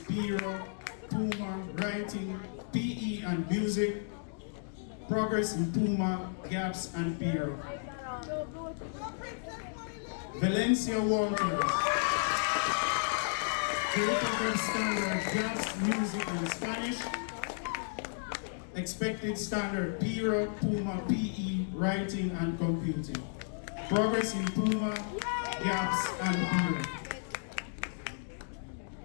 PIRA, Puma, writing, PE and music, progress in Puma, GAPS and PIRA. Valencia Walters, greater than standard GAPS, music and Spanish, Expected standard, PIRA, PUMA, PE, writing and computing. Progress in PUMA, gaps and PIRA.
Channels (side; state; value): right; silent; digital silence